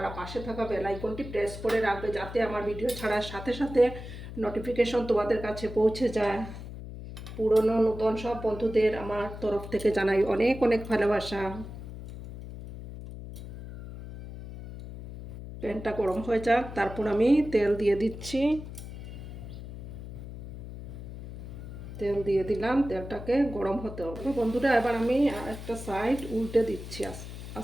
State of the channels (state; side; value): noise; left; hum, 11 dB below the sound